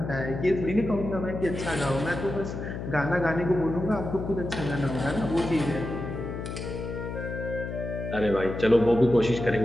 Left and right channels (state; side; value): noise; left; hum, 6 dB below the sound